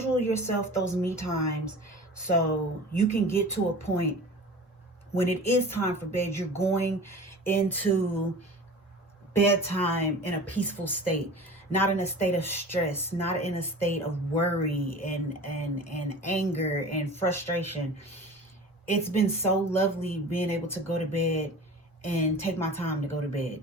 yourself those me times so you can get to a point when it is time for bed, you're going into bedtime in a peaceful state, not in a state of stress, not in a state of worry and anger and frustration. It's been so lovely being able to go to bed and take my time to go to bed.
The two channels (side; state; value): both; normal; correlation 0.38